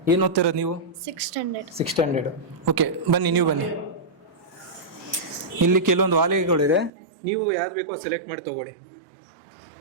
ಏನು ಓದ್ತಿರೋದು ನೀವು? 6th standard. 6th standard. Okay, ಬನ್ನಿ, ನೀವು ಬನ್ನಿ. ಇಲ್ಲಿ ಕೆಲವೊಂದು ವಾಲೆಗಳಿದೆ, ನೀವು ಯಾವ್ದು ಬೇಕೋ ಸೆಲೆಕ್ಟ್ ಮಾಡಿ ತಗೊಳ್ಳಿ.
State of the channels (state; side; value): drops out; left; at 6.9 s